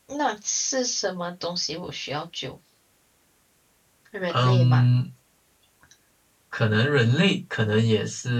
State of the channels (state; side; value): identical; both; correlation 1.00